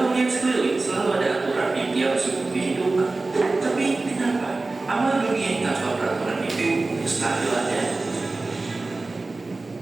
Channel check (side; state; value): left; quieter; 3.4 dB